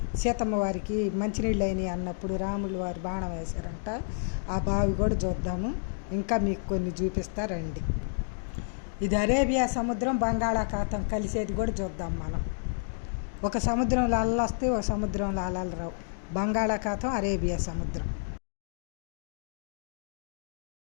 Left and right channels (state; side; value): silent; right; digital silence